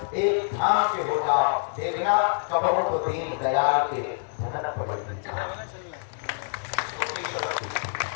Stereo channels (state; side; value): silent; right; digital silence